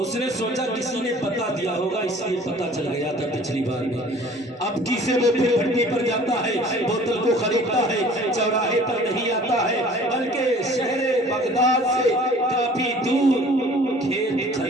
اس نے سوچا کسی نے بتا دیا ہوگا، اس لیے پتا چل گیا تھا پچھلی بار میں۔ اب کسی وہ پھر بھٹی پر جاتا ہے، بوتل کو خریدتا ہے، چوراہے پر نہیں آتا ہے بلکہ شہر بغداد سے کافی دور کھیت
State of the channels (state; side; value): normal; both; correlation 0.49